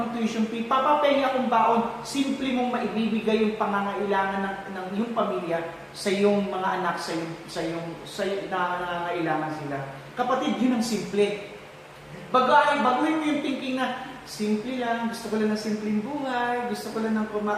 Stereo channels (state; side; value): identical; both; correlation 1.00